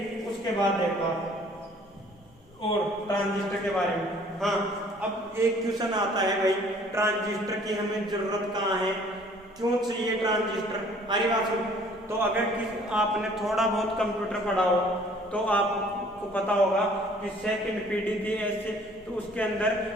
उसके बाद देखो आप और ट्रांजिस्टर के बारे में, हाँ अब एक क्वेश्चन आता है भाई ट्रांजिस्टर की हमें जरूरत कहाँ है, क्यों चाहिए ट्रांजिस्टर। अरे बात सुन, तो अगर आपने थोड़ा बहुत कंप्यूटर पढ़ा हो तो आपको पता होगा कि सेकंड पीढ़ी थी ऐसे, तो उसके अंदर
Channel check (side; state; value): both; normal; correlation 0.56